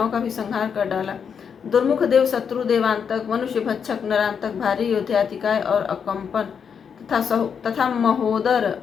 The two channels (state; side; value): quieter; right; 6.9 dB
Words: का भी संहार कर डाला। दुर्मुख देव शत्रु देवांतक, मनुष्य भक्षक नरांतक, भारी योद्धातिकाय और अकंपन तथा महोदर